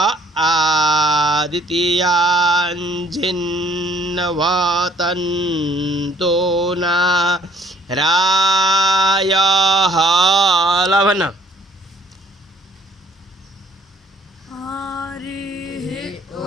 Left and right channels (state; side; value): normal; both; correlation 0.60